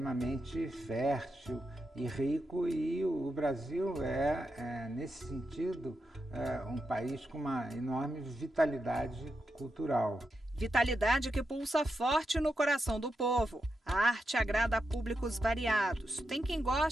fértil e rico, e o Brasil nesse sentido, um país com uma enorme vitalidade cultural. Vitalidade que pulsa forte no coração do povo. A arte agrada a públicos variados. Tem quem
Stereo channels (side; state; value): both; normal; correlation 0.86